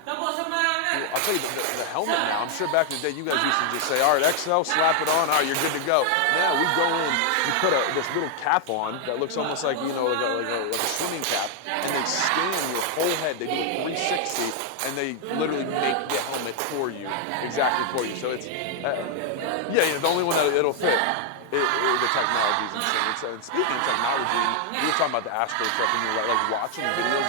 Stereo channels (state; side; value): different; both; correlation 0.00